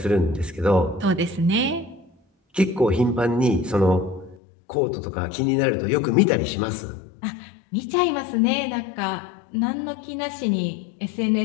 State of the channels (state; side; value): drops out; right; at 4.4 s